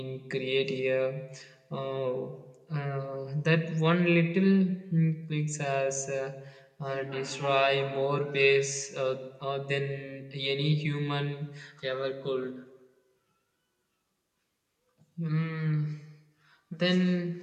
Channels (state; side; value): identical; both; correlation 1.00